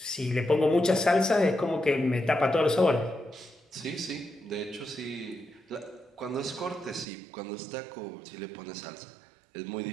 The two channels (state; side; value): drops out; left; at 7.1 s